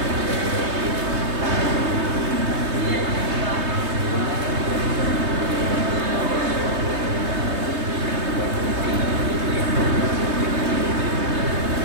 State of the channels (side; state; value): left; late; 3.2 ms